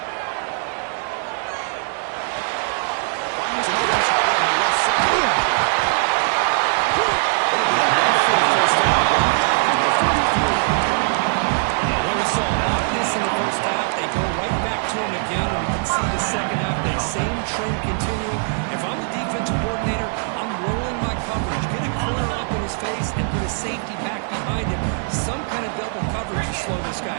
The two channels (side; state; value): left; silent; 65 dB below the other